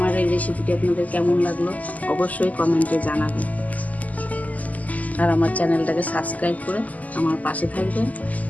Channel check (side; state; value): right; late; 0.076 ms